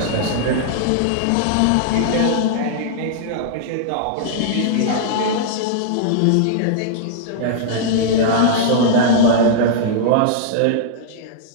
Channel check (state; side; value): different; both; correlation -0.02